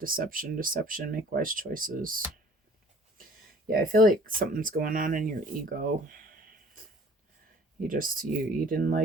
deception, make wise choices. Yeah, I feel like something's going on in your ego. You didn't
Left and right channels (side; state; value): both; normal; correlation 0.51